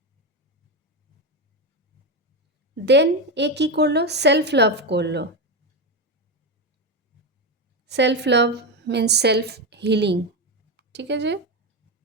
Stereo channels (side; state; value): both; normal; correlation 0.13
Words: দেন এ কী করলো, সেলফ লাভ করলো। Self love means self healing. ঠিক আছে,